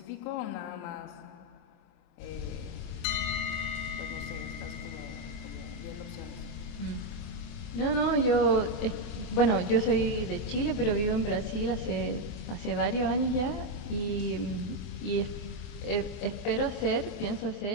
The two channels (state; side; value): late; right; 24 ms